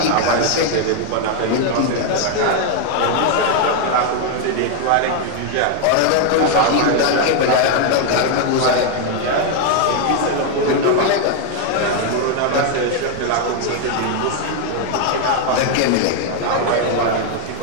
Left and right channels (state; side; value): different; both; correlation 0.01